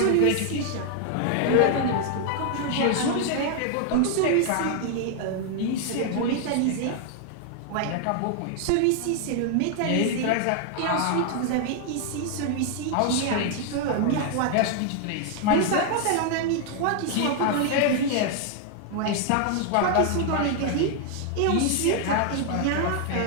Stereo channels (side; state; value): both; different; correlation 0.00